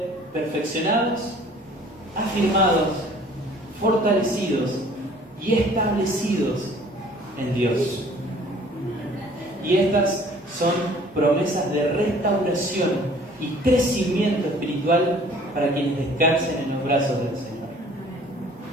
perfeccionados, afirmados, fortalecidos y establecidos en Dios. Y estas son promesas de restauración y crecimiento espiritual para quienes descansen en los brazos del Señor.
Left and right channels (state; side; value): normal; both; correlation 0.53